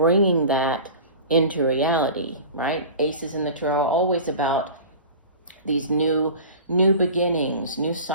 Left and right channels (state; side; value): inverted; both; correlation -0.37